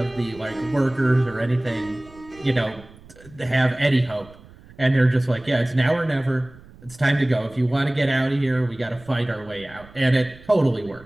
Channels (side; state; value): right; noise; rumble, 22 dB below the sound